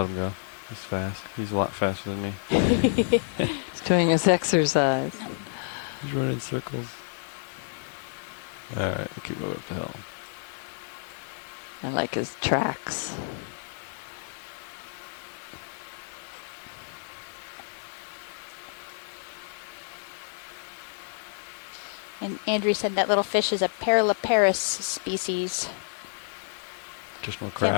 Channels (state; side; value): silent; right; digital silence